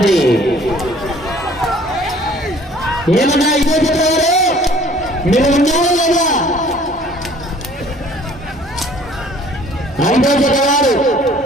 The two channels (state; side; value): normal; both; correlation 0.54